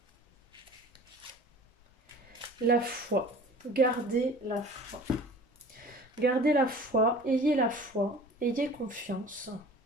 La foi. Gardez la foi. Gardez la foi, ayez confiance.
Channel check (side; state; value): both; normal; correlation 0.43